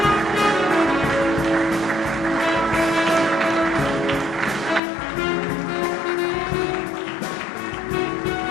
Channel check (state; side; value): drops out; right; at 4.8 s